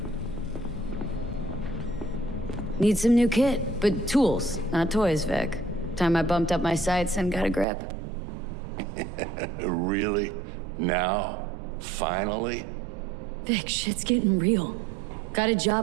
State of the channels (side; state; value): left; drops out; at 7.7 s